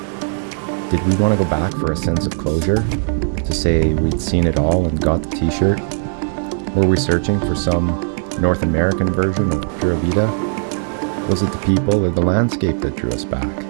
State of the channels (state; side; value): silent; left; 60 dB below the other